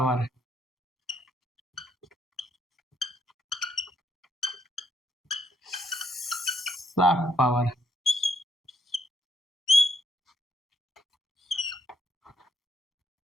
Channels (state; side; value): normal; both; correlation 0.74